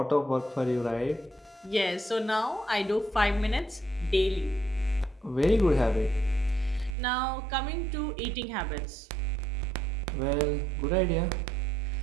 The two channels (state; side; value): drops out; left; at 7.0 s